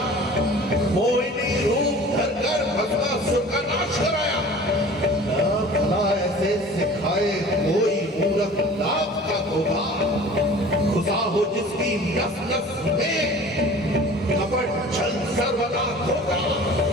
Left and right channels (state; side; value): normal; both; correlation 0.44